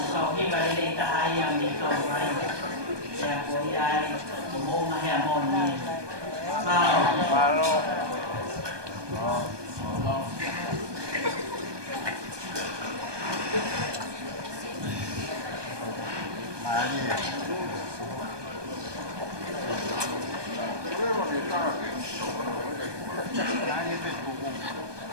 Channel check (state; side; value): late; left; 1.2 ms